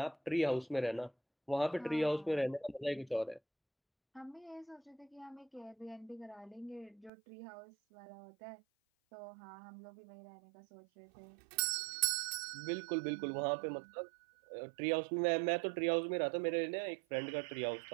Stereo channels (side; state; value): left; drops out; at 7.1 s